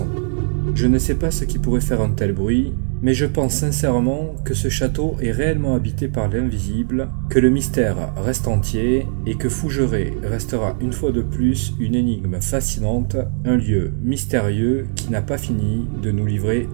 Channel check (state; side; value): silent; left; digital silence